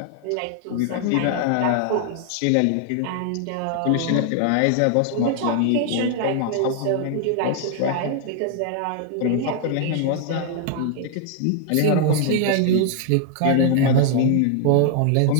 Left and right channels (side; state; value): both; different; correlation 0.00